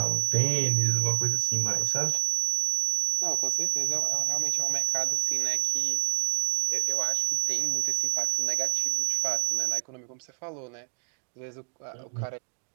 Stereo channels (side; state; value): left; silent; digital silence